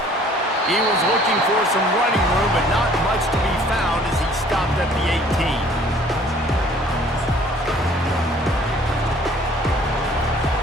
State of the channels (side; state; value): both; normal; correlation 0.55